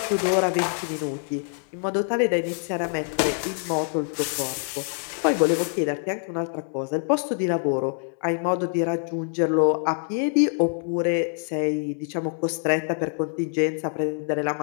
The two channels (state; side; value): silent; right; 58 dB below the other